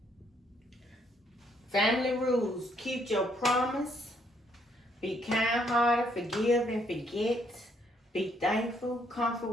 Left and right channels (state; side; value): normal; both; correlation 0.70